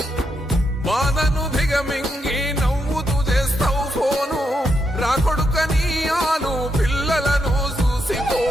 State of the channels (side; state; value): both; normal; correlation 0.81